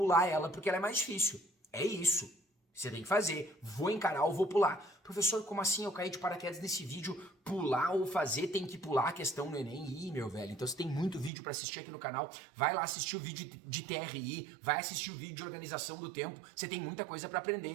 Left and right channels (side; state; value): left; drops out; at 11.3 s